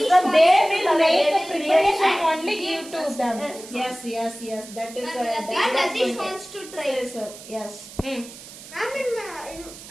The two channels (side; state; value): right; noise; hiss, 16 dB below the sound